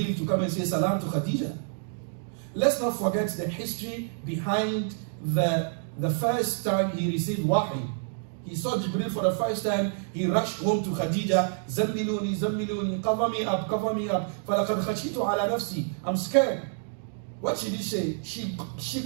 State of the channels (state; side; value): silent; left; digital silence